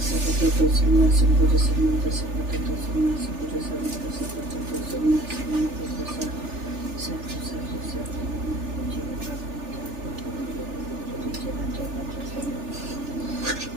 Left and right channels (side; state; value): left; late; 3.4 ms